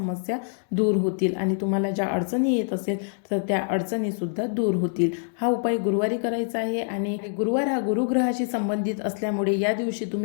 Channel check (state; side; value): silent; right; digital silence